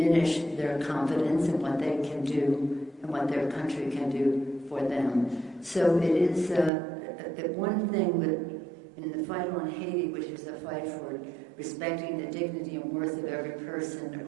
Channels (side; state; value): left; drops out; at 6.7 s